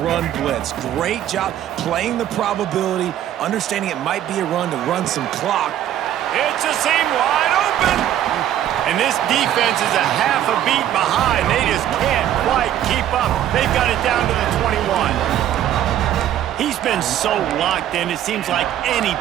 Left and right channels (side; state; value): left; quieter; 11.5 dB